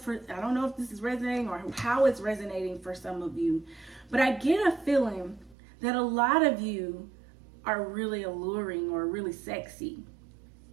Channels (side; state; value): left; drops out; at 5.6 s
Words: this is resonating or how it's resonating for some of you, but I get a feeling that a lot of you are really alluring or really sexy,